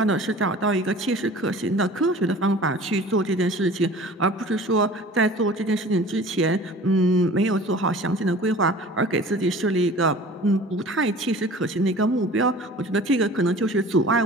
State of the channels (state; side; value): normal; both; correlation 0.43